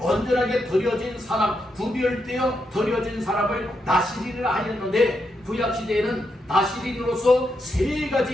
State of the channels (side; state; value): both; normal; correlation 0.82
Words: 드려진 사람, 구별되어 드려진 사람을 나시린이라 하였는데 구약시대에는 나시린으로서 세